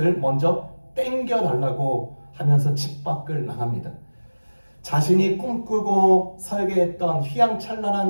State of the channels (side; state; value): both; inverted; correlation -1.00